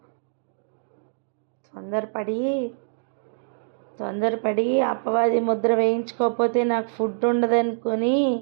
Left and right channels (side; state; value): left; silent; digital silence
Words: తొందరపడి అపవాది ముద్ర వేయించుకోకపోతే నాకు ఫుడ్ ఉండదనుకొని